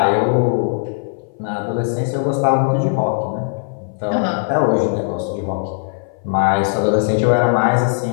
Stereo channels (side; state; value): right; silent; 58 dB below the other